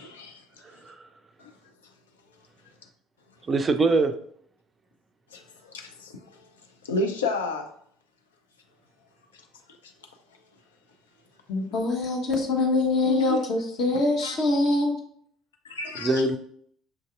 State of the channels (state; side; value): normal; both; correlation 0.48